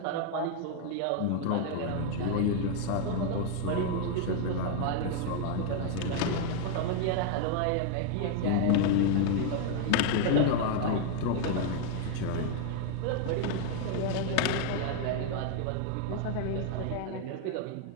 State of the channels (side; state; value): both; different; correlation 0.00